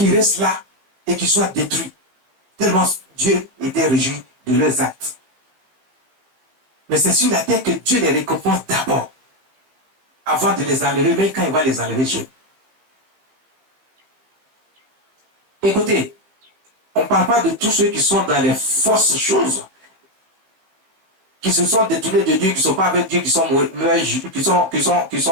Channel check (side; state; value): left; late; 16 ms